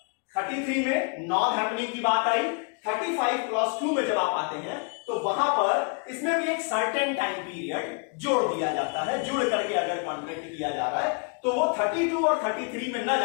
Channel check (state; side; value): quieter; right; 36.3 dB